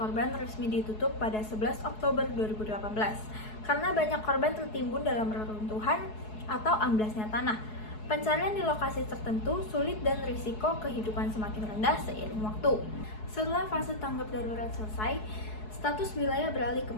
resmi ditutup pada 11 Oktober 2018 karena banyak korban tertimbun dalam reruntuhan atau amblasnya tanah. Pencarian di lokasi tertentu sulit dan risiko kehidupan semakin rendah seiring waktu. Setelah fase tanggap darurat selesai, status wilayah beralih ke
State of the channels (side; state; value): right; late; 4.7 ms